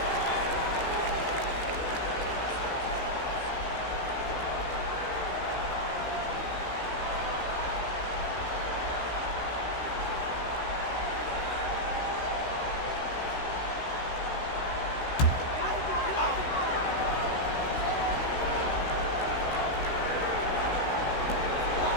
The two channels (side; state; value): right; late; 16 ms